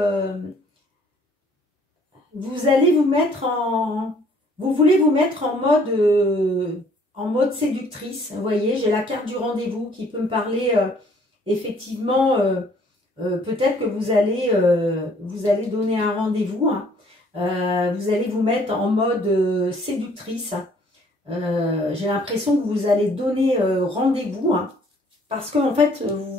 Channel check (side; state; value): both; normal; correlation 0.60